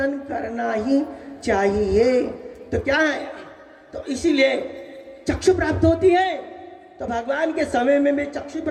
करना ही चाहिए। तो क्या है? तो इसीलिए चक्षु प्राप्त होती है। तो भगवान के समय में भी चक्षु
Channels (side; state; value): both; identical; correlation 1.00